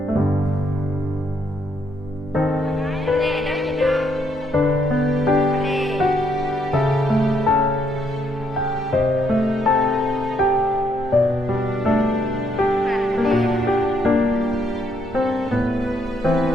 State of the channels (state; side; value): normal; both; correlation 0.73